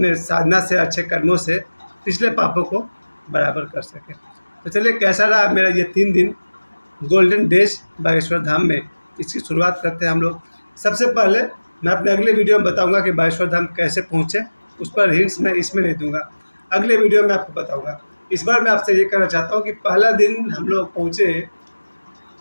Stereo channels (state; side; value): inverted; both; correlation -1.00